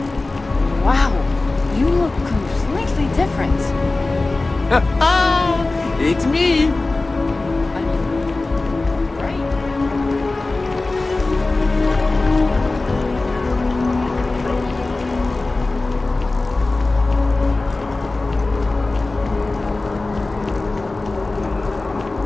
Wow, you look completely different. It's me.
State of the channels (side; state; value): right; quieter; 3.2 dB